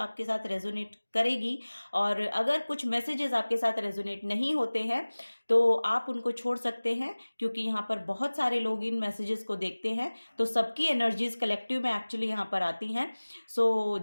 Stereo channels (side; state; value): both; inverted; correlation -1.00